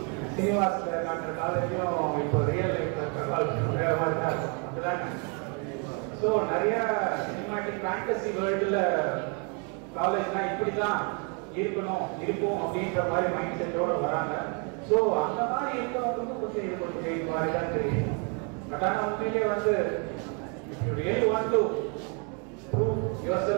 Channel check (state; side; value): quieter; left; 36.3 dB